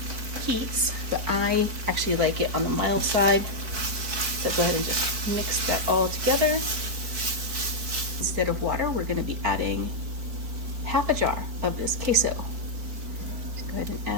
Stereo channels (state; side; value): late; left; 4.5 ms